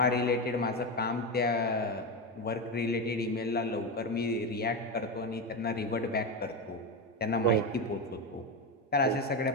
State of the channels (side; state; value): both; normal; correlation 0.14